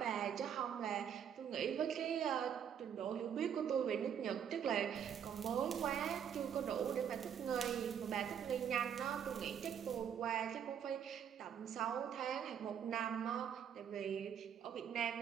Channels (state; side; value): quieter; left; 8.5 dB